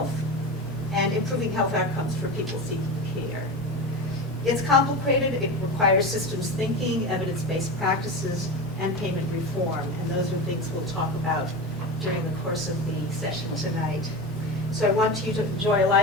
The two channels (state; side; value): normal; both; correlation 0.25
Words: and improving health outcomes for people seeking care. It's complicated. It requires systems thinking, evidence-based practices, and payment reform. And those are things we'll talk about during the course of the session tonight. So I want you to enjoy a